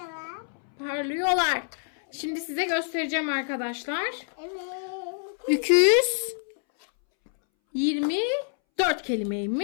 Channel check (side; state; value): right; silent; 60 dB below the other